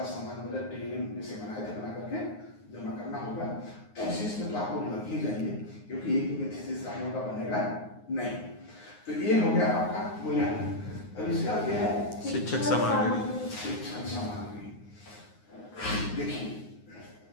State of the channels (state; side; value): late; right; 9.6 ms